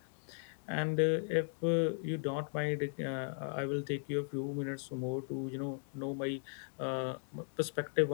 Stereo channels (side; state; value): right; silent; digital silence